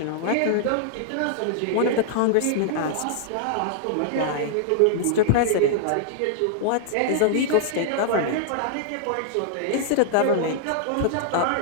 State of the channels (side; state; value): both; different; correlation -0.01